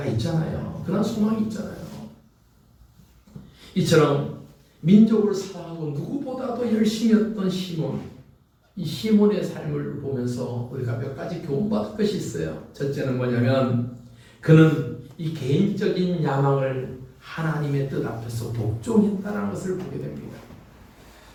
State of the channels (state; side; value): identical; both; correlation 1.00